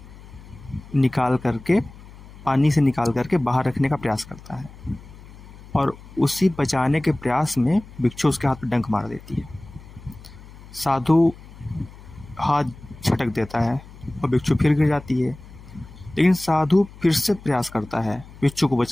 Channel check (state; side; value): noise; left; hum, 19 dB below the sound